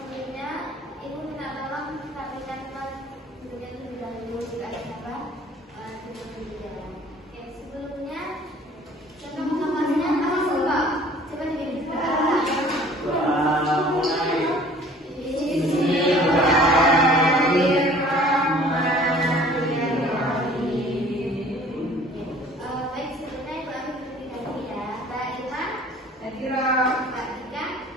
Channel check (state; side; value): normal; both; correlation 0.51